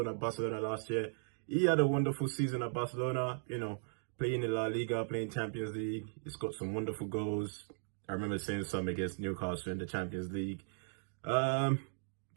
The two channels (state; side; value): silent; left; digital silence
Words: at Barcelona last year. He had a wonderful season at Barcelona, playing in La Liga, playing Champions League. He's got some wonderful goals. I remember seeing some against Newcastle in the Champions League.